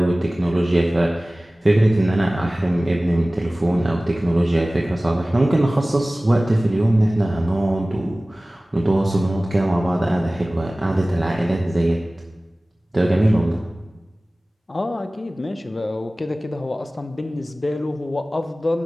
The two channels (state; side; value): normal; both; correlation 0.98